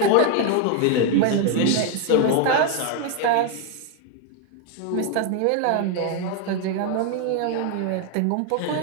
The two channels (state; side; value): different; both; correlation 0.01